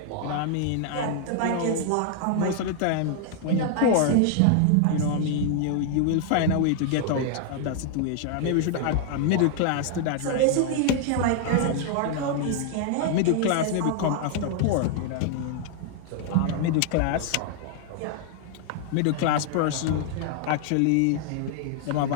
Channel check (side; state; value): both; different; correlation 0.00